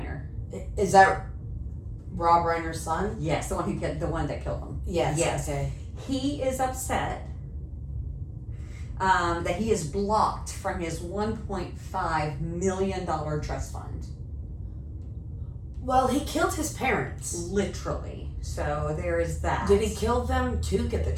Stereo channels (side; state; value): both; identical; correlation 1.00